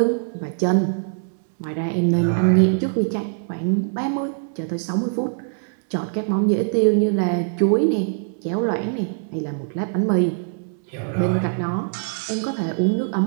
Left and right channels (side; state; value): left; silent; digital silence